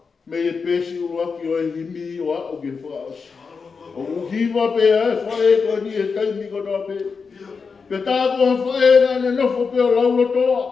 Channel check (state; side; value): quieter; right; 5.2 dB